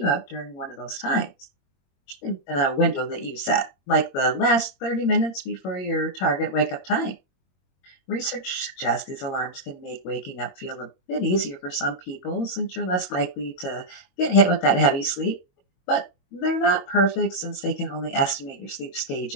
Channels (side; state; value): right; late; 22 ms